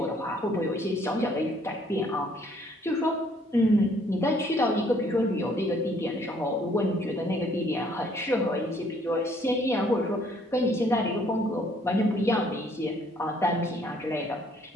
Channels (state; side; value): normal; both; correlation 0.63